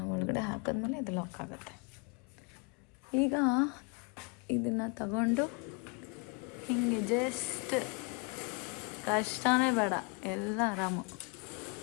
ಒಳಗಡೆ ಹಾಕಿದ್ಮೇಲೆ ಇದು ಲಾಕ್ ಆಗುತ್ತೆ. ಈಗ ಇದನ್ನು ತಗೊಂಡು ಹಿಂಗೆ ಜಸ್ಟ್ ಕಷ್ಟನೇ ಬೇಡ, ಎಲ್ಲ ಆರಾಮು.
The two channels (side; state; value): right; quieter; 33.2 dB